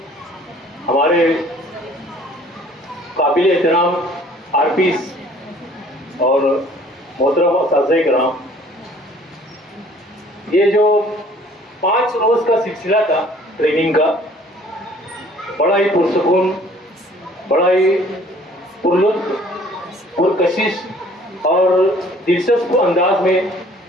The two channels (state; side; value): normal; both; correlation 0.55